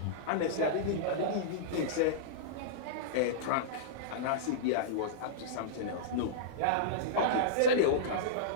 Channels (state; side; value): different; both; correlation -0.03